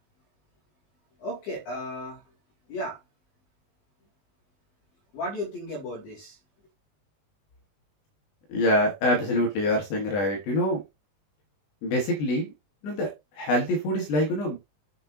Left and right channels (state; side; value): late; right; 20 ms